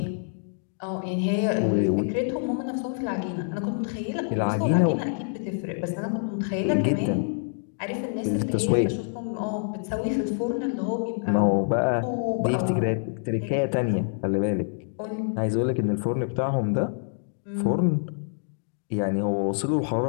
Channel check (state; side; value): silent; right; digital silence